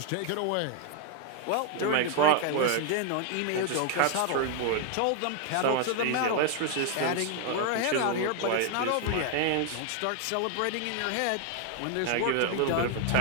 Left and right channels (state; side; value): different; both; correlation 0.00